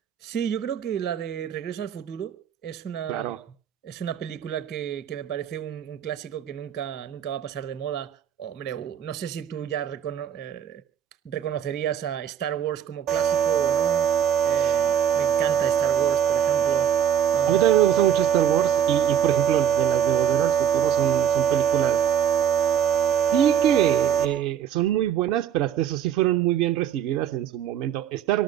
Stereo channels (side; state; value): left; quieter; 9.3 dB